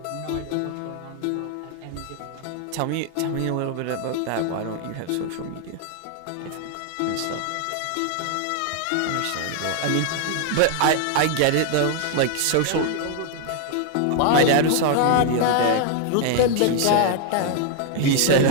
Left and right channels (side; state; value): both; different; correlation 0.00